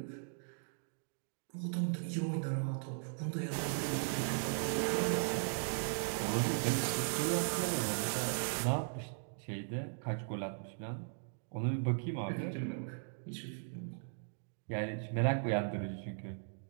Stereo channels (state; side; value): silent; left; digital silence